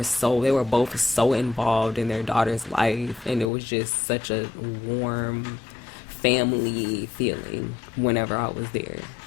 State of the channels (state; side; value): drops out; right; at 3.5 s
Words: both so involved in their daughter's life, and it was just such a warm family feeling whenever I was there.